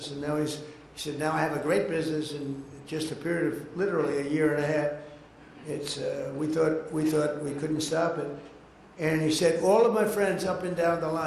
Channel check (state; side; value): identical; both; correlation 1.00